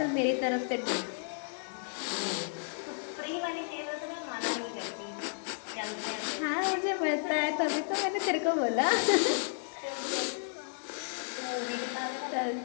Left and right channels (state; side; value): silent; right; digital silence